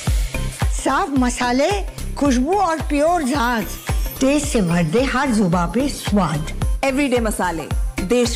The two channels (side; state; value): both; identical; correlation 1.00